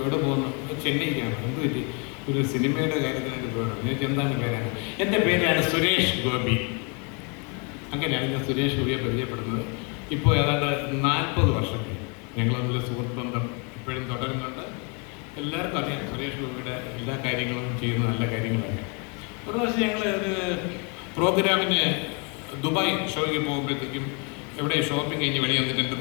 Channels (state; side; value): quieter; right; 34.6 dB